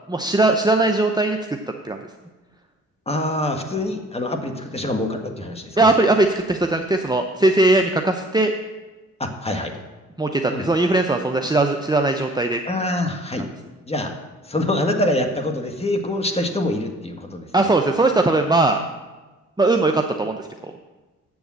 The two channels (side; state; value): both; normal; correlation 0.53